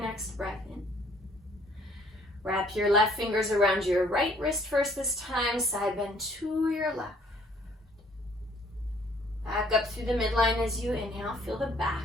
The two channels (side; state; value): both; normal; correlation 0.61